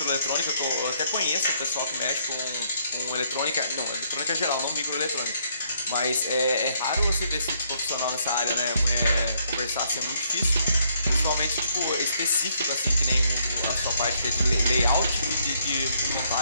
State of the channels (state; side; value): inverted; both; correlation -0.70